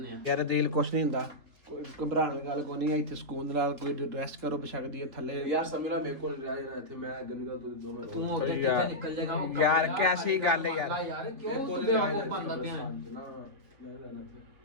ਆ। ਯਾਰ ਦਿਲ ਕੁਛ ਨਹੀਂ ਹੁੰਦਾ, ਕੋਈ ਘਬਰਾਉਣ ਦੀ ਗੱਲ ਕੋਈ ਨਹੀਂ ਹੈ। ਇੱਥੇ ਸਕੂਨ ਦੇ ਨਾਲ ਕੋਈ ਰੈਸਟ ਕਰੋ, ਬਸ਼ੱਕਦੀ ਹੈ ਥੱਲੇ। ਯਾਰ ਸਮੀਲਾ ਮੇਰੇ ਕੋਲ ਨਹੀਂ ਰਿਹਾ ਯਾਰ, ਇੱਥੇ ਮੈਂ ਗੰਗਾ ਤੋਂ ਦੋਵੇਂ ਤੂੰ ਅੱਗੇ ਯਾਰ, ਕਿੱਥੇ ਨਿਕਲ ਜਾਏਗਾ? ਯਾਰ ਕੈਸੀ ਗੱਲ ਹੈ ਯਾਰ। ਯਾਰ ਕਿਉਂ ਤੂੰ ਬੇਵਕੂਫ ਬਣਦਾ ਪਿਆ?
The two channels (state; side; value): late; left; 3.5 ms